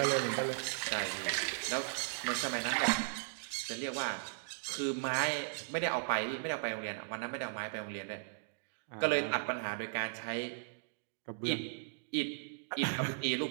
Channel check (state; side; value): silent; left; digital silence